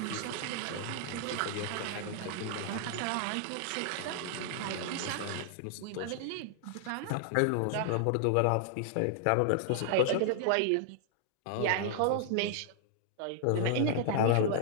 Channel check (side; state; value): both; different; correlation -0.01